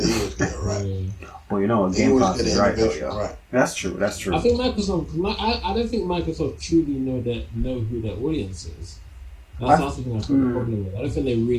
get it right. Well, you know, They Game always Pass get is the right, though, innovation yeah. right. That's true. I think I don't think Microsoft truly know who their audience is. That's the thing I've got a problem with. I don't think they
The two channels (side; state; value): both; identical; correlation 1.00